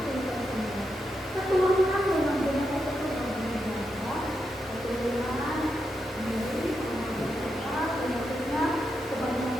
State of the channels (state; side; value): normal; both; correlation 0.85